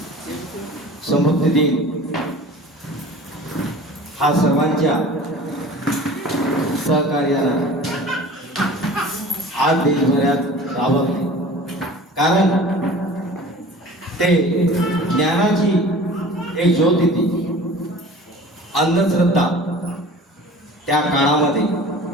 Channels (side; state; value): both; normal; correlation 0.42